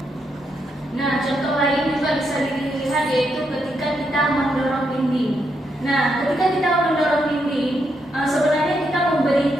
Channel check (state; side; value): normal; both; correlation 0.80